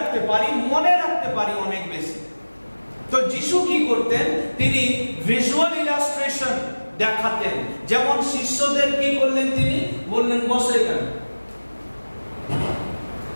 পারি, মনে রাখতে পারি অনেক বেশি। তো যিশু কি করতেন, তিনি ভিজুয়াল ইলাস্ট্রেশন দেখাতেন। যেমন শিষ্যদের কি করলেন, তিনি বললেন বসো এখানে,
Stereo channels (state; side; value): inverted; both; correlation -1.00